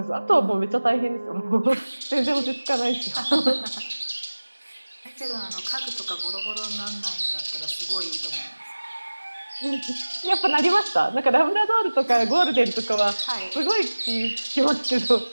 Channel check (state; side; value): inverted; both; correlation -1.00